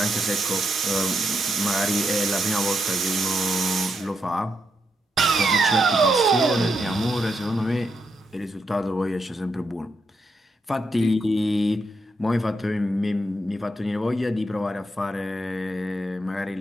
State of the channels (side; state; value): both; normal; correlation 0.81